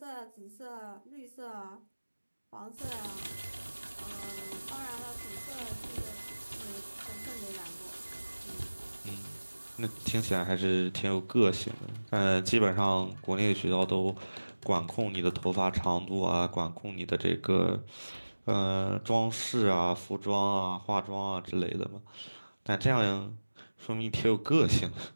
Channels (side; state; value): both; inverted; correlation -1.00